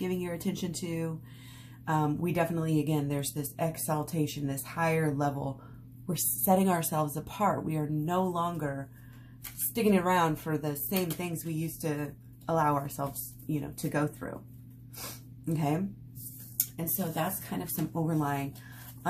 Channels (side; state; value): both; identical; correlation 1.00